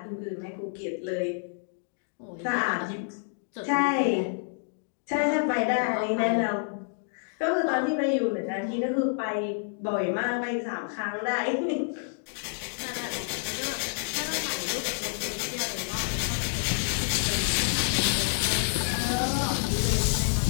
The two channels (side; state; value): right; silent; digital silence